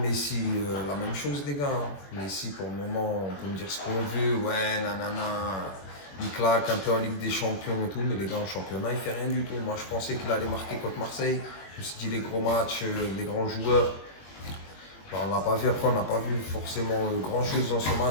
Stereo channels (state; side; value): late; right; 21 ms